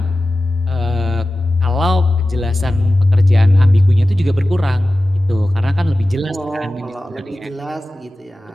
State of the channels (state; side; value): normal; both; correlation 0.95